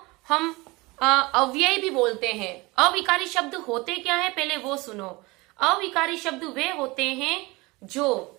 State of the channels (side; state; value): left; quieter; 23.3 dB